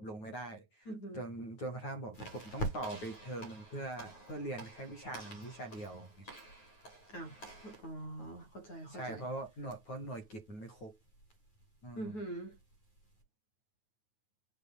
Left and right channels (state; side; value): late; right; 9.4 ms